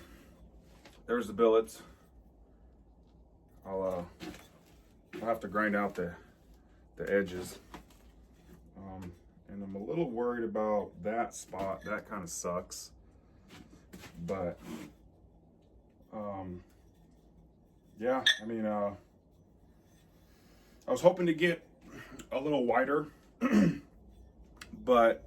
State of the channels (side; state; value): both; identical; correlation 1.00